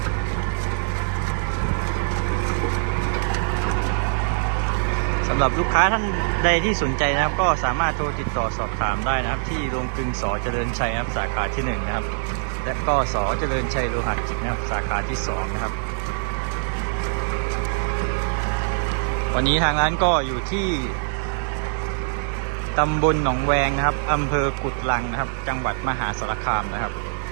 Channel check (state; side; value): silent; left; 63 dB below the other